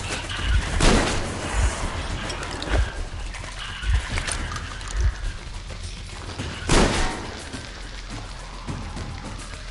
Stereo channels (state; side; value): identical; both; correlation 1.00